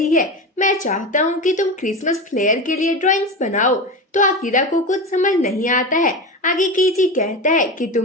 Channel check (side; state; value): both; normal; correlation 0.23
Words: है, मैं चाहता हूँ कि तुम क्रिसमस फ्लेयर के लिए ड्राइंग्स बनाओ। तो अकीरा को कुछ समझ नहीं आता है। आगे केजी कहता है कि